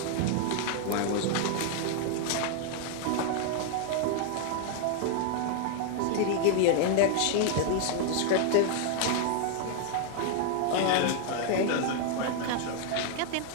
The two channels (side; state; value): both; different; correlation 0.00